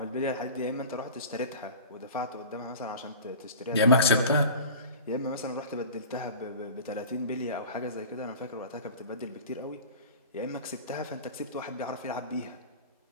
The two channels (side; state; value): both; inverted; correlation -0.37